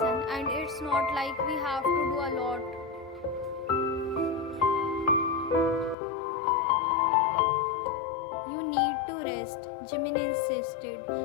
and it's not like we have to do a lot. You need to rest, Jimin insisted,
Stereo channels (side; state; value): right; drops out; at 6.0 s